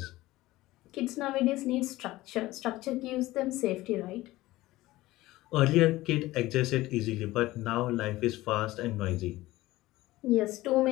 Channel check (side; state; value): right; quieter; 17.8 dB